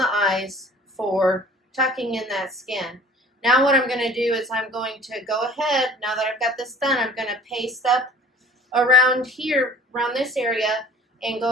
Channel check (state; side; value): normal; both; correlation 0.48